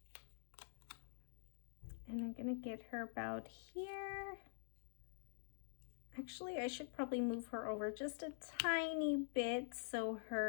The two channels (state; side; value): silent; right; digital silence